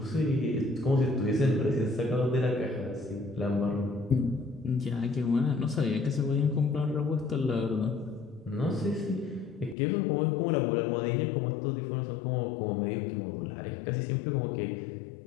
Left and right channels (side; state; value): right; drops out; at 9.8 s